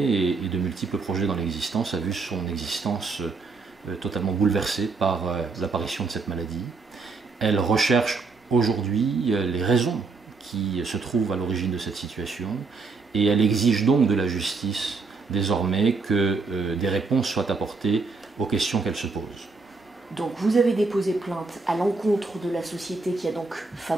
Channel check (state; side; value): quieter; left; 4.2 dB